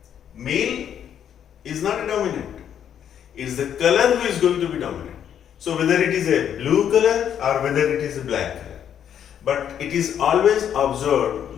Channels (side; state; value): right; quieter; 9.2 dB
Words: male is not a dominant. It is the color who is going to be dominant. So, whether it is a blue color or whether it is a black color. But it is always